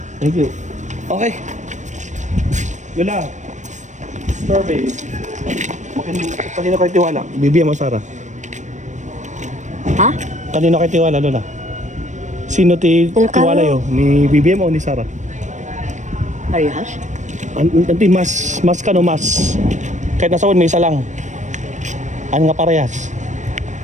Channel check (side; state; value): left; late; 0.35 ms